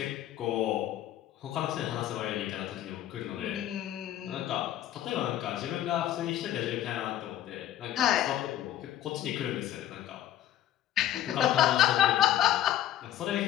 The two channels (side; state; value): right; quieter; 12.2 dB